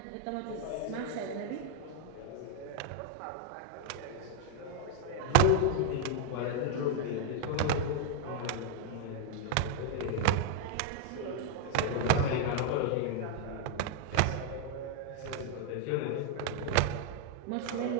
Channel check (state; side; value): different; both; correlation 0.00